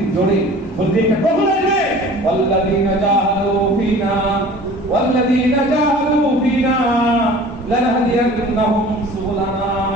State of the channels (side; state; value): both; normal; correlation 0.44